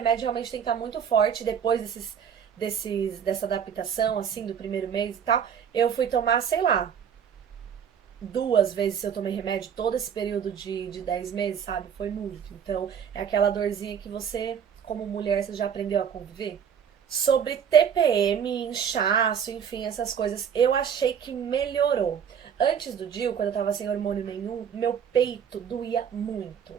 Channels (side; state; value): left; quieter; 7.9 dB